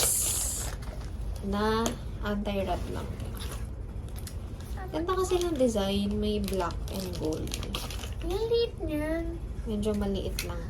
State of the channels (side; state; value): both; identical; correlation 1.00